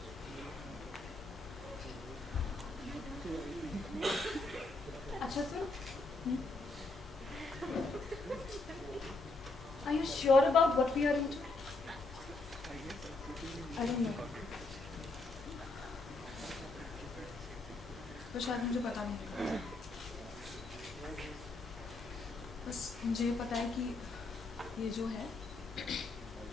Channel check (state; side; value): quieter; right; 3.2 dB